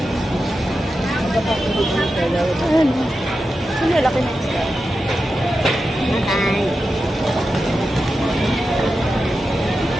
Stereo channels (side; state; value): both; normal; correlation 0.90